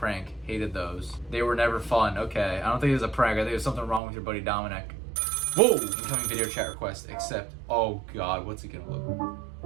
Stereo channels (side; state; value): left; drops out; at 4.0 s